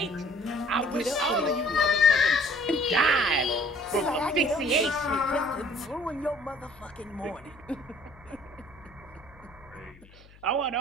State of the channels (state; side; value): noise; left; hum, 24 dB below the sound